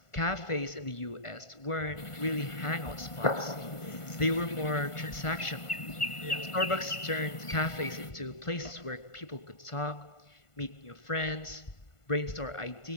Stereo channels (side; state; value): right; late; 1.5 ms